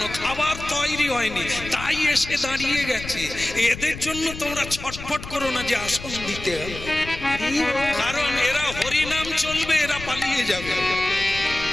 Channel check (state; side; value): noise; left; rumble, 11 dB below the sound